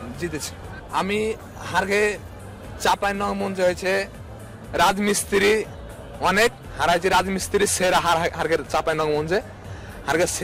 জিতেছে। আমি হারগে চাঁপাইনবাবগঞ্জ হয়েছে রাজমিস্ত্রি অনেক হারাইছে। রাজমিস্ত্রি সেরা হারগে চাঁপাইনবাবগঞ্জে। হারগে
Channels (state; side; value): identical; both; correlation 1.00